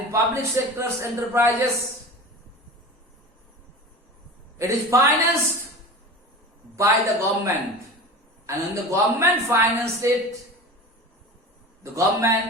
in public sector's enterprises, it is financed by the government. And when the government financed it, the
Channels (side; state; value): both; normal; correlation 0.34